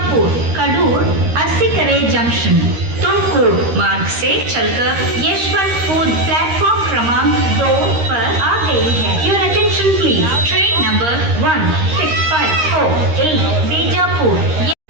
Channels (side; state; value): left; late; 13 ms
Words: कड़ूर अरसीकेरे जंक्शन तुमकूर मार्ग से चलकर यशवंतपुर प्लेटफॉर्म क्रमांक 2 पर आ गई है। Your attention please. Train number 16548 Bijapur